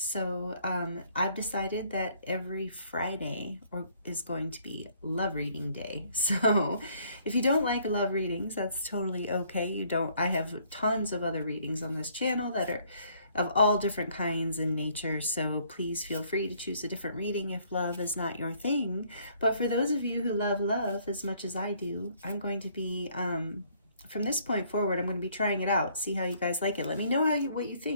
I've decided that every Friday is going to be love reading day. So if you don't like love readings, that's totally okay. I have tons of other readings on this channel that are of all different kinds in nature, so please feel free to choose a different reading if love is not your thing. But for those of you who love love as much as I do, I'm going to be from this point forward, I'm going to be trying it out, see how you guys like it. Let me know what you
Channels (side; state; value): both; inverted; correlation -0.64